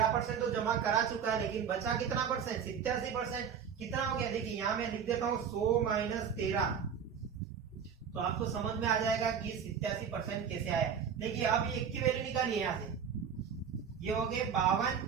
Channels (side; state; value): left; quieter; 7.3 dB